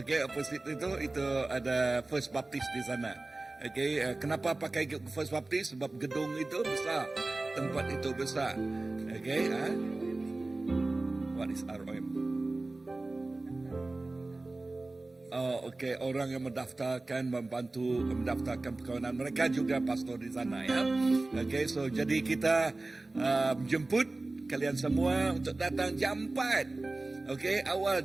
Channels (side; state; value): left; quieter; 3.1 dB